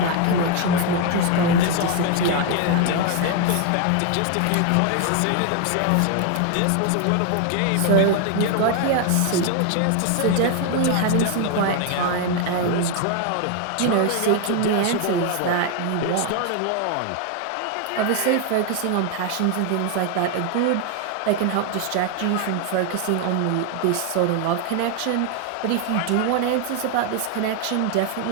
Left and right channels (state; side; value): different; both; correlation 0.01